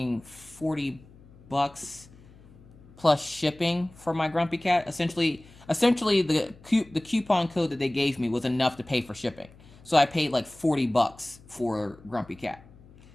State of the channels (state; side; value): noise; left; hum, 24 dB below the sound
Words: $40 plus shipping for my Grumpy Cat, essentially the coupon code that they gave me was enough to pay for shipping. So I paid like $40 for Grumpy Cat.